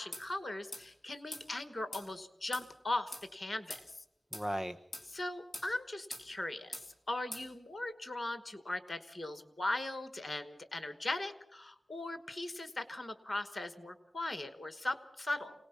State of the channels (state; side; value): normal; both; correlation 0.95